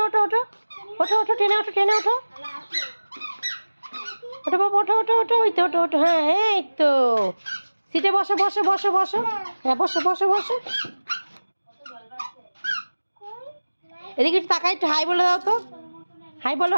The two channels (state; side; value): inverted; both; correlation -1.00